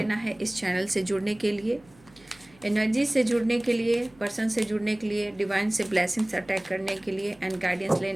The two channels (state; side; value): noise; right; hum, 27 dB below the sound